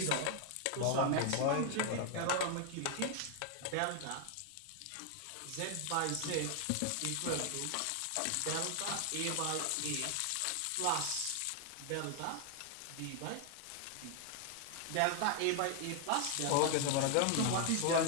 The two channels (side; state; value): both; different; correlation 0.00